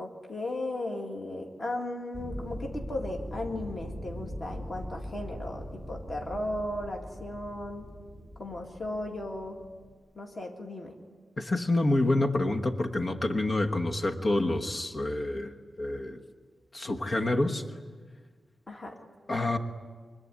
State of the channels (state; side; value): normal; both; correlation 0.93